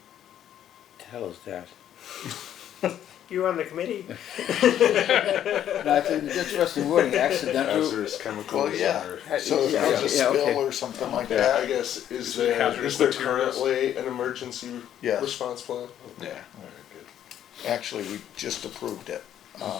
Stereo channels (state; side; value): quieter; right; 10.6 dB